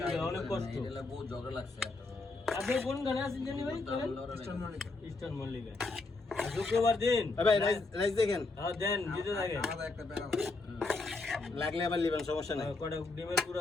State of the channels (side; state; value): right; quieter; 3.5 dB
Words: অনেক কষ্ট এটা বহুত ঝগড়া লাগছে আপনি কোন গানে আছেন জানি ভাই ইস্টার্ন মল্লিকা শুক্রবার দিন ভাই রাইস দেখেন হ্যাঁ দেন দিতে থাকে আমাদের একটা ব্যাগ লাগলে আবার লিবেন সমস্যা নাই কটা ডিমের